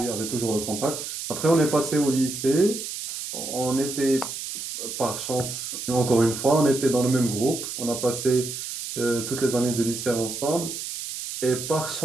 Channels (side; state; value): right; noise; hiss, 7 dB below the sound